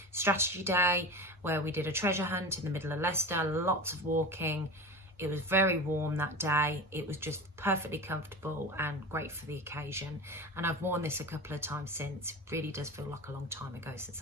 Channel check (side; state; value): both; normal; correlation 0.29